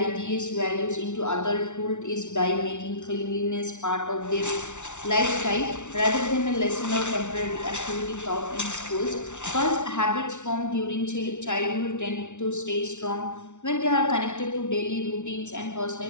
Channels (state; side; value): late; right; 0.84 ms